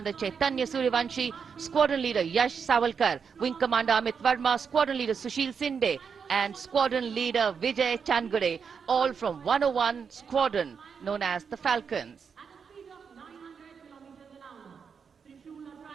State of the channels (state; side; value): quieter; left; 6.3 dB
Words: Chaitanya Suryavanshi, Squadron Leader Yash Savalkar, Wing Commander Amit Verma, Squadron Leader Sushil Sinde, and Squadron Leader Vijay Chandgade, all from 101 Squadron, known as the Falcons.